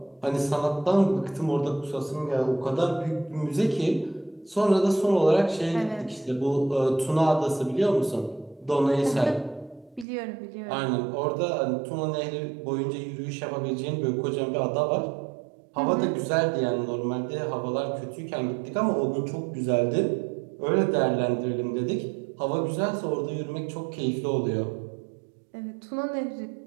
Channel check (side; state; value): left; drops out; at 10.1 s